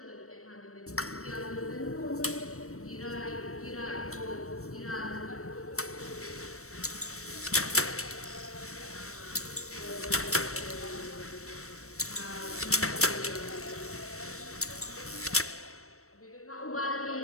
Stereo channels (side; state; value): right; late; 0.64 ms